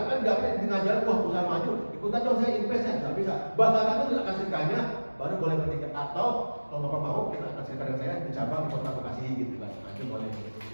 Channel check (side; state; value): both; inverted; correlation -1.00